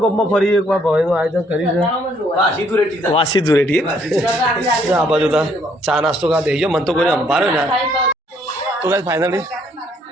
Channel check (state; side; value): normal; both; correlation 0.67